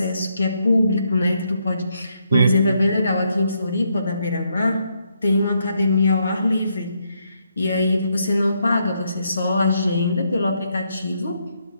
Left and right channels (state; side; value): inverted; both; correlation -0.77